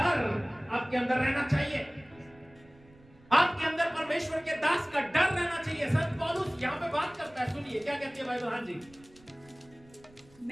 आपके अंदर रहना चाहिए। आपके अंदर परमेश्वर के दास का डर रहना चाहिए। संत पौलुस यहाँ पे बात करता है, सुनिए क्या कहती है बाइबल। हाँ जी,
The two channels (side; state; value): right; noise; rumble, 27 dB below the sound